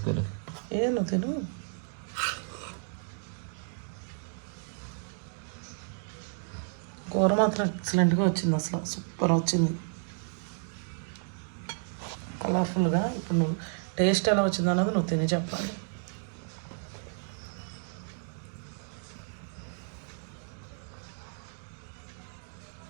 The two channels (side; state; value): left; silent; 57 dB below the other